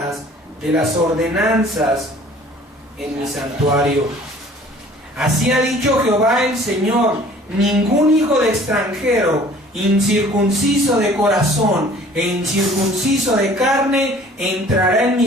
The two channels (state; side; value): normal; both; correlation 0.51